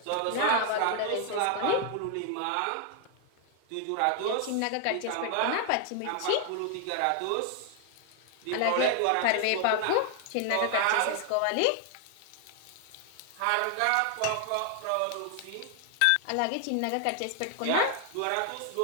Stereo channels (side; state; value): both; different; correlation 0.00